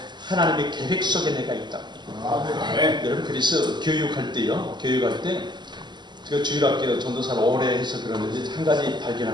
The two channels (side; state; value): left; late; 0.21 ms